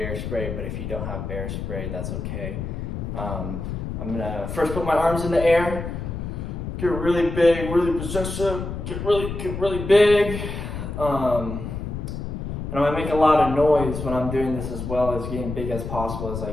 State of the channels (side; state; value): left; noise; rumble, 5 dB below the sound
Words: spray, but if you don't have bear spray, that's okay. I'm gonna first put my arms in the air, get really big, really possessive, get really big. And I'm gonna make a lot of noise when I'm doing this, as well as getting big as possible as I